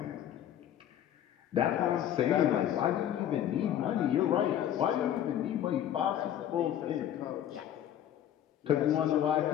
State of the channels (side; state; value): right; quieter; 10.8 dB